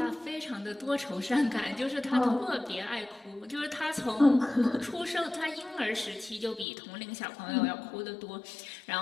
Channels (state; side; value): drops out; right; at 6.7 s